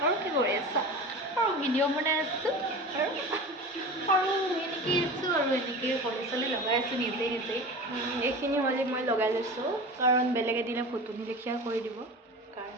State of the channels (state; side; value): normal; both; correlation 0.32